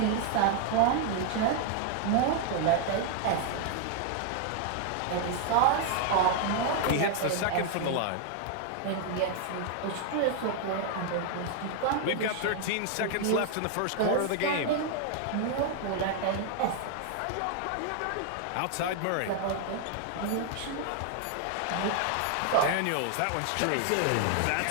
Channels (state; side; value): different; both; correlation 0.00